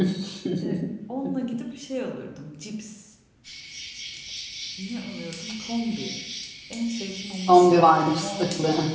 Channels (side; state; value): both; identical; correlation 1.00